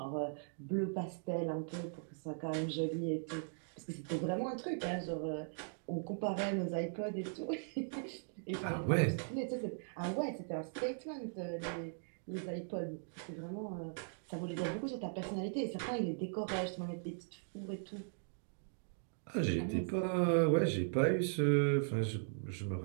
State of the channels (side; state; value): left; silent; digital silence